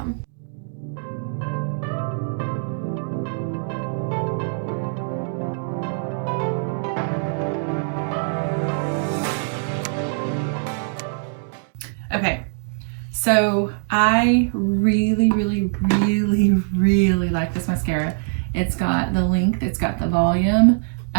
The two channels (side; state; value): left; silent; digital silence